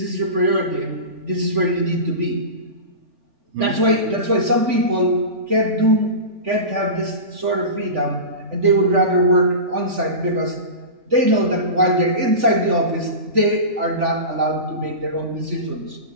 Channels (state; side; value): late; left; 3.5 ms